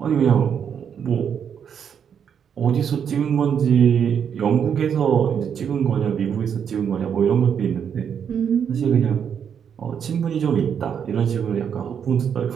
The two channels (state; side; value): quieter; left; 7.8 dB